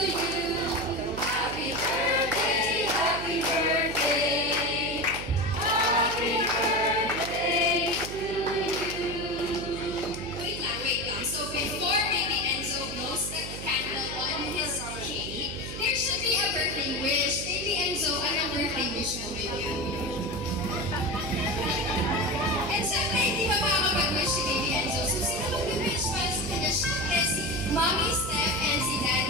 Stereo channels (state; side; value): noise; right; hum, 9 dB below the sound